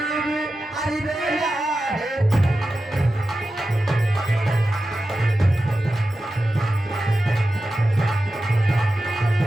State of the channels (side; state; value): both; normal; correlation 0.92